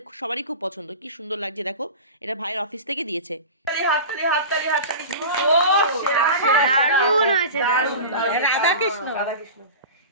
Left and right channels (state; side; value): inverted; both; correlation -0.31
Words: সবারই খুব পছন্দ, কি সুন্দর লাগছে দেখো। এটা ভাইয়ের অফিস থেকে দিয়েছে। দারুণ হয়েছে, দারুণ। রাধাকৃষ্ণ